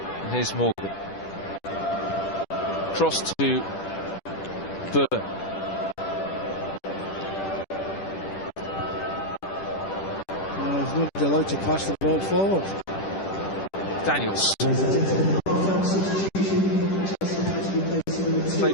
And here's Morgan. Cross to Burn. He's not allowed to pass the ball forward. Daniels.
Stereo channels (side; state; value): right; late; 10 ms